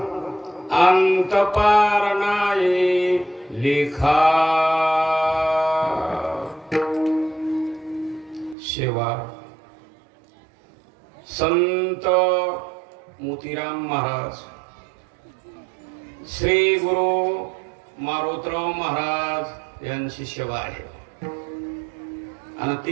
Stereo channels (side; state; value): left; drops out; at 8.6 s